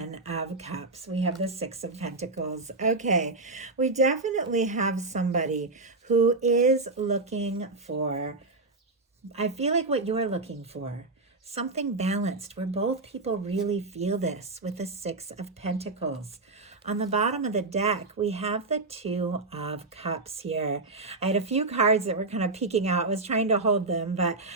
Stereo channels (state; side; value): quieter; left; 3.4 dB